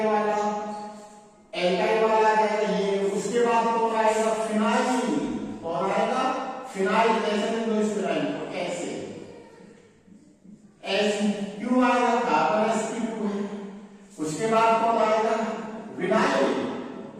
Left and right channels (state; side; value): identical; both; correlation 1.00